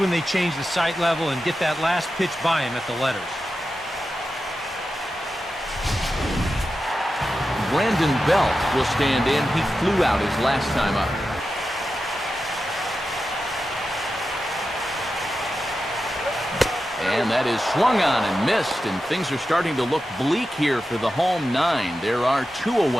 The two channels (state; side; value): normal; both; correlation 0.91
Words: they change the sight level and get that last pitch by him at the letters. Brandon Belt will stand in. He flew out his last time up. And that is swung on and missed, and things are starting to look bleak here for the home 9. There are 2